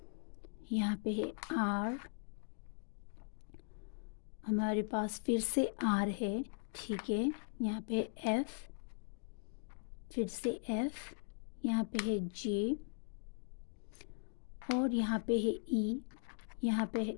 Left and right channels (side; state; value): right; silent; digital silence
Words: यहाँ पे है आर, हमारे पास फिर से आर है, ठीक है। यहाँ पे एफ, फिर से एफ, यहाँ पे है जे, और यहाँ पे है ई, यहाँ पे है